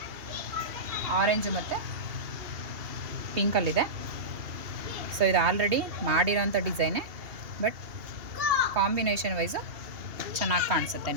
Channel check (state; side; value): late; left; 2.8 ms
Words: ಆರೆಂಜು ಮತ್ತು ಪಿಂಕಲ್ಲಿದೆ. ಸೊ ಇದು ಆಲ್ರೆಡಿ ಮಾಡಿರೋಂಥ ಡಿಸೈನೇ, ಬಟ್ ಕಾಂಬಿನೇಷನ್ ವೈಸು ಚೆನ್ನಾಗಿ ಕಾಣಿಸುತ್ತೆ